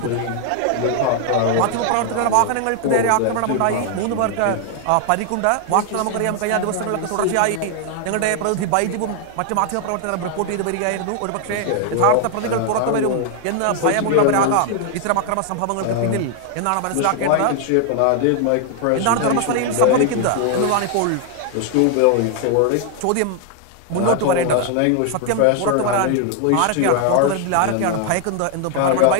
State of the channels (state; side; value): different; both; correlation 0.00